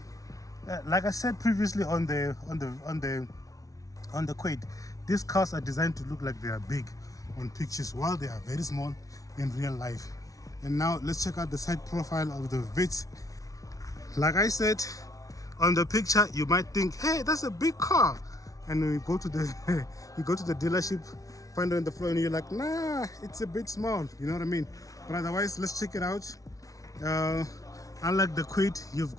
like I said previously on the Kwid, these cars are designed to look like they are big on pictures, while they are very small in real life. And now let's check out the side profile of the Vitz. Like I said, on the picture you might think, hey, that's a big car. And when you go to the you go to the dealership, find it on the floor, and you're like, nah, it's a bit small, you know what I mean? But otherwise, let's check it out. Unlike the Kwid, you've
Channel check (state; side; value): late; right; 0.17 ms